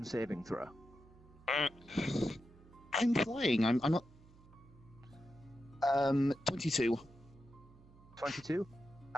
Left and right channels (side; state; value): right; noise; hum, 23 dB below the sound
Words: saving throw. I'm flying. I'm not. 22. 22.